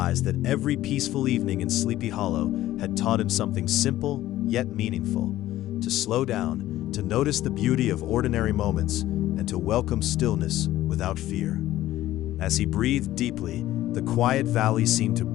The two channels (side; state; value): right; quieter; 14.5 dB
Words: that every peaceful evening in Sleepy Hollow had taught him something simple yet meaningful: to slow down, to notice the beauty of ordinary moments, and to welcome stillness without fear. As he breathed deeply, the quiet valley seemed to